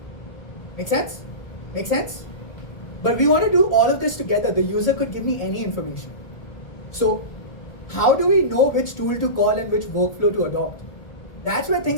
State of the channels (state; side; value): late; right; 1.4 ms